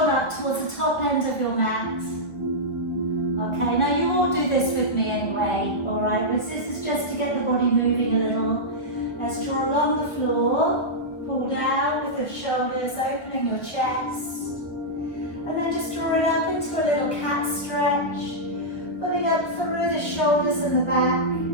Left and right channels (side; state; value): right; late; 1.1 ms